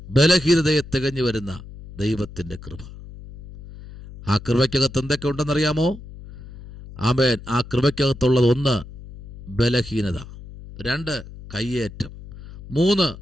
ബലഹീനതയെ തികഞ്ഞു വരുന്ന ദൈവത്തിൻ്റെ കൃപ. ആ കൃപയ്ക്കകത്ത് എന്തൊക്കെ ഉണ്ടെന്നറിയാമോ? ആമേൻ. ആ കൃപയ്ക്കകത്തുള്ളത് 1 ബലഹീനത, 2 കയ്യേറ്റം, 3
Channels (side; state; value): left; noise; hum, 15 dB below the sound